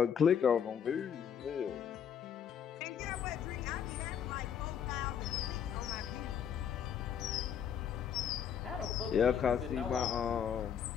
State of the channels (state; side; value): quieter; right; 8.2 dB